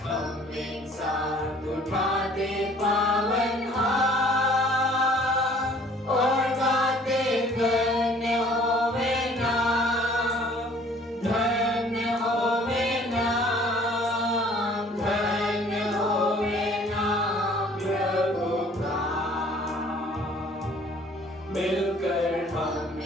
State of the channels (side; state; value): both; normal; correlation 0.54